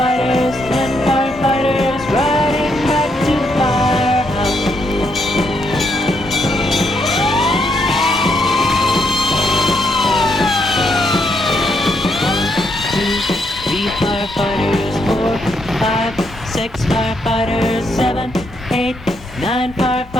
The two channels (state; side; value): normal; both; correlation 0.76